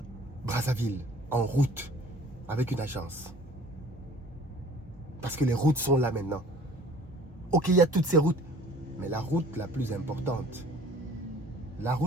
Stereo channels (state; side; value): normal; both; correlation 0.50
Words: Brazzaville en route. avec une agence. Parce que les routes sont là maintenant. Ok, il y a toutes ces routes. Mais la route la plus importante, la